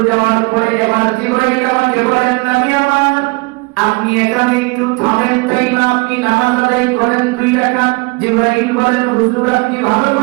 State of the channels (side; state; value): left; quieter; 27.8 dB